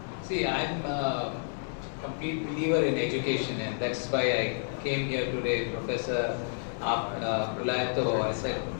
See, I'm a complete believer in education, and that's why I came here today, Professor Prulayato. I said,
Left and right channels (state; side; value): silent; right; digital silence